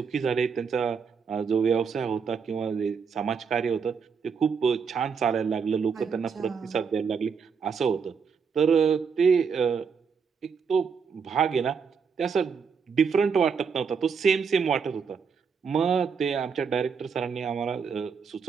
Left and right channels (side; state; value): left; quieter; 6.1 dB